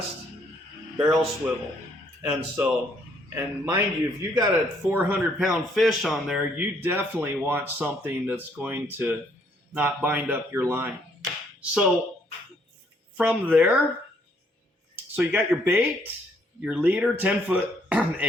barrel swivel. And mind you, if you got a 400-pound fish on there, you definitely want something that's going to not bind up your line. So from there, so you got your bait, your leader, 10-foot,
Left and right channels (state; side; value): normal; both; correlation 0.68